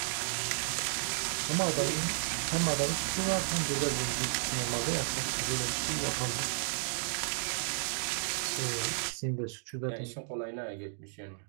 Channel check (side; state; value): left; silent; digital silence